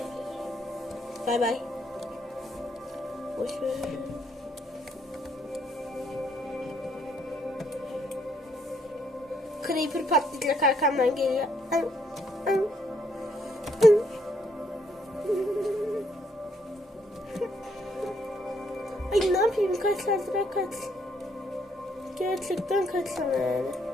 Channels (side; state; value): both; normal; correlation 0.71